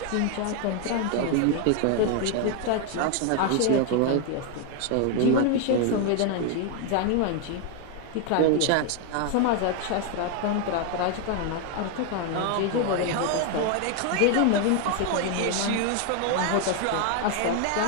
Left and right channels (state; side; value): different; both; correlation 0.01